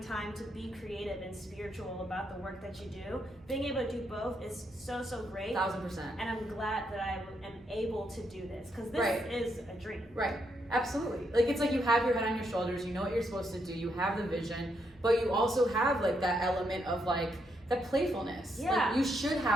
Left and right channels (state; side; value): normal; both; correlation 0.78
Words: time to be creative and spiritual about the work that you do. Being able to do both is so great. 1000%. And I'm glad that I am able to do this, because this is a dream. Right. Absolutely. Like, it's like you have your head on your shoulders, you know what you're supposed to do, you have the vision, but you also have like that element of like that playfulness. Yeah. Like, you should